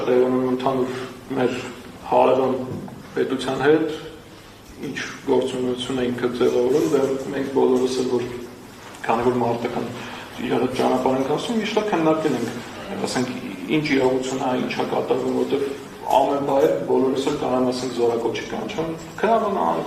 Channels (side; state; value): both; identical; correlation 1.00